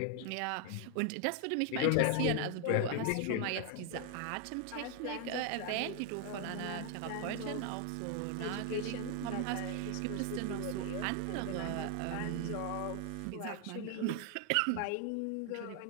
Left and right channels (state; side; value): different; both; correlation 0.00